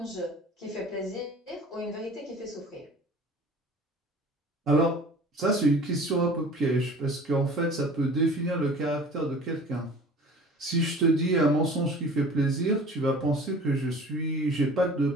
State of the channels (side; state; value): both; normal; correlation 0.44